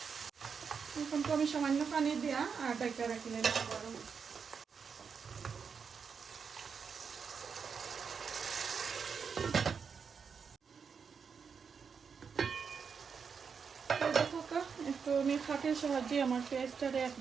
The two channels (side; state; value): left; quieter; 6.1 dB